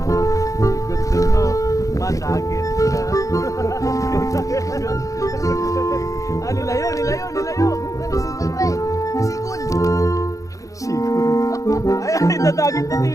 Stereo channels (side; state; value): right; late; 0.16 ms